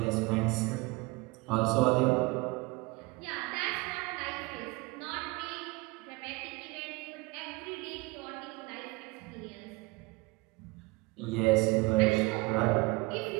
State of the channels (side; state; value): left; quieter; 24.1 dB